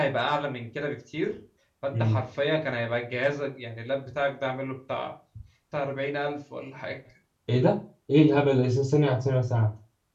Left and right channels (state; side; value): identical; both; correlation 1.00